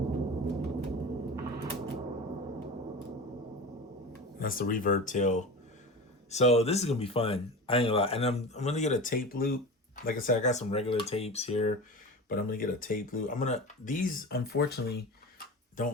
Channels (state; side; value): normal; both; correlation 0.30